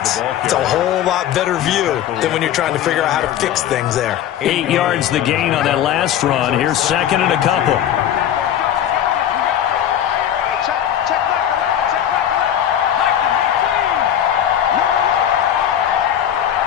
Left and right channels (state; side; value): quieter; right; 10.5 dB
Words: it's a whole lot better view than when you're trying to figure out how to fix things there. 8 yards the gain on that last run. Here's 2nd and a couple.